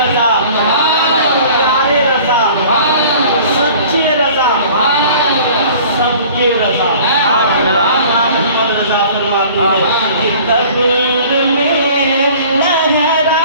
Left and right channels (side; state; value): both; inverted; correlation -0.48